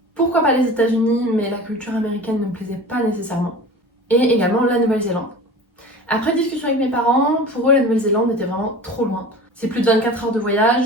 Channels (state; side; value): normal; both; correlation 0.37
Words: pourquoi pas les États-Unis, mais la culture américaine ne me plaisait pas nécessairement, et également la Nouvelle-Zélande. Après discussion avec mes parents, pour eux la Nouvelle-Zélande était vraiment trop loin. C'est plus de 24 heures de